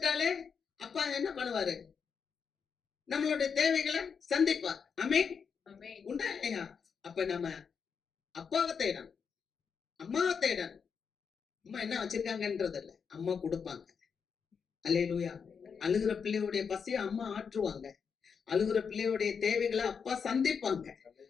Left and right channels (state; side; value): quieter; right; 6.3 dB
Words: அப்பா என்ன பண்ணுவாரு? நம்மளுடைய தேவைகளை சந்திப்பார். ஆமென். உண்டா இல்லையா? அப்ப நம்ம அப்பாவை தேடணும், அம்மாவை தேடணும். அம்மா என்ன வச்சிருக்காங்கன்றது இல்ல, அம்மா கொடுப்பாங்க. அல்லேலூயா. அழுகிற பிள்ளையுடைய பசியை அம்மா ஆற்றுவாங்க, அழுகிற பிள்ளையுடைய தேவைகளை அப்பா சந்திப்பாங்க.